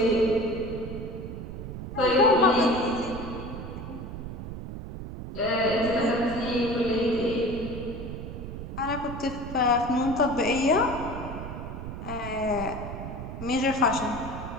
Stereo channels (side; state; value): right; noise; rumble, 8 dB below the sound